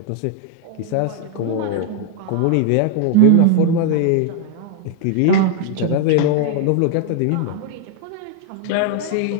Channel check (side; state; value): both; different; correlation 0.00